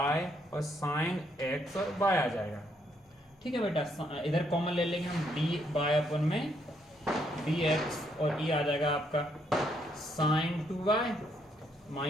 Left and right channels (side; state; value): both; normal; correlation 0.73